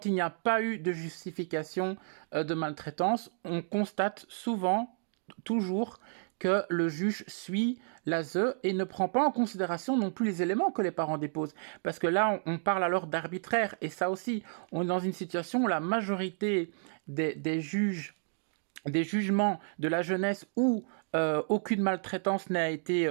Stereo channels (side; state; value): left; silent; 57 dB below the other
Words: il n'y a pas eu de justification de maltraitance, on constate souvent, toujours, que le juge suit l'ASE et ne prend pas en considération non plus les éléments que les parents déposent. Parce que là, on parle alors d'arbitraire. Et ça aussi, on est dans une situation où la majorité des jugements de la jeunesse où aucune maltraitance n'a été